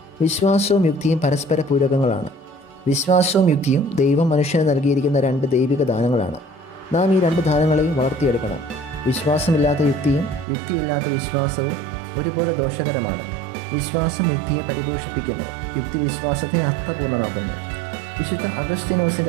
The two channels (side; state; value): left; drops out; at 10.5 s